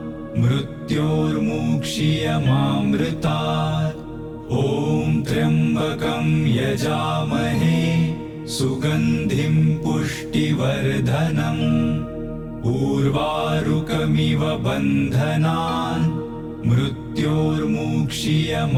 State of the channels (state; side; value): identical; both; correlation 1.00